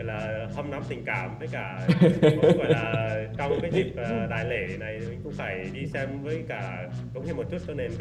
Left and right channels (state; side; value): identical; both; correlation 1.00